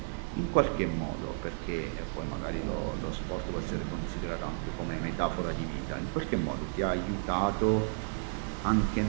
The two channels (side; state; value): left; silent; digital silence